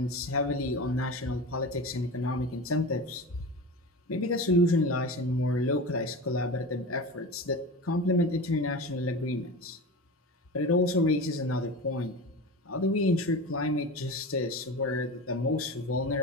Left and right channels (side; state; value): both; normal; correlation 0.29